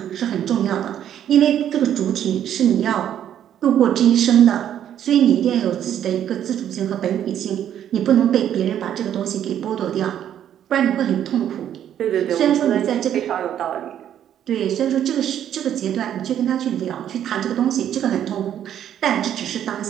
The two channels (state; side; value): quieter; left; 10.3 dB